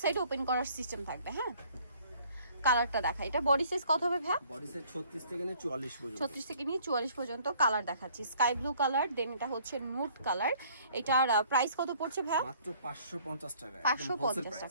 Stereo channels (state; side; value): inverted; both; correlation -0.58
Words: সাইড ওপেন করার সিস্টেম থাকবে। হ্যাঁ, কালারটা দেখা, এটা বডি সাইজ কত হবে ভাই? বডি সাইজ 36 থেকে নিয়ে 44 পর্যন্ত। 36 থেকে নিয়ে 44 পর্যন্ত কালার দেখাচ্ছি। স্কাই ব্লু কালার, দেন এটা হচ্ছে নুড কালার। এটার প্রাইস কত পড়ছে ভাই? মাত্র 550 টাকা। 550